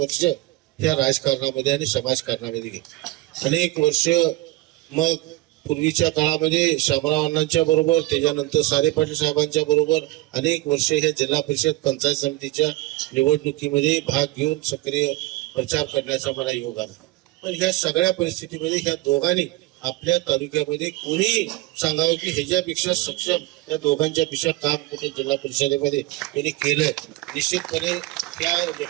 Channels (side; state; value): left; quieter; 18.7 dB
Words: या राजकारणामध्ये आणि समाजकारणामध्ये गेली. अनेक वर्ष मग पूर्वीच्या काळामध्ये शामराव अण्णांच्या बरोबर, त्याच्यानंतर सारे पाटील साहेबांच्या बरोबर अनेक वर्ष ह्या जिल्हा परिषद पंचायत समितीच्या निवडणुकीमध्ये भाग घेऊन सक्रिय प्रचार करण्याचा मला योग आला. पण ह्या सगळ्या परिस्थितीमध्ये ह्या दोघांनी आपल्या तालुक्यामध्ये कोणी सांगावं की ह्याच्यापेक्षा सक्षम या दोघांच्या पेक्षा काम कुठे जिल्हा परिषदेमध्ये त्यांनी केलंय. निश्चितपणे त्या